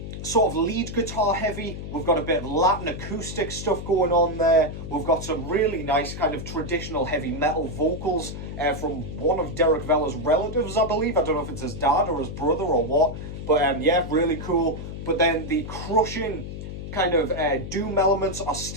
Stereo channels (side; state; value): left; noise; hum, 8 dB below the sound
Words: sort of lead guitar heavy. We've got a bit of Latin acoustic stuff going on there. We've got some really nice kind of traditional heavy metal vocals from one of Derek Vella's relatives, I believe. I don't know if it's his dad or his brother or what, but yeah, really cool. But then the crushing kind of doom elements are